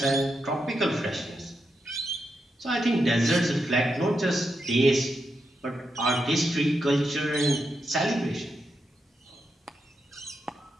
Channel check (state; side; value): normal; both; correlation 0.85